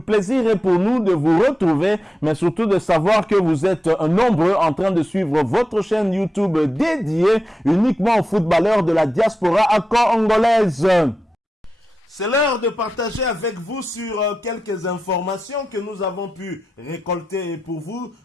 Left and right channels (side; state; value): both; normal; correlation 0.90